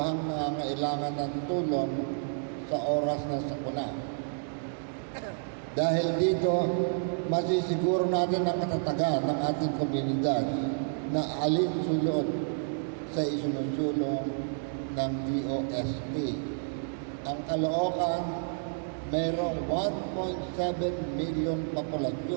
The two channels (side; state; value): left; silent; digital silence